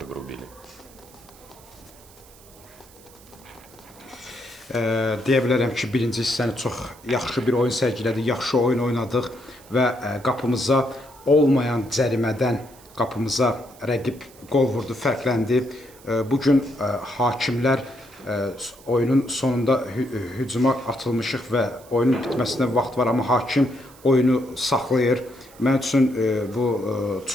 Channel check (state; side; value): noise; right; hiss, 24 dB below the sound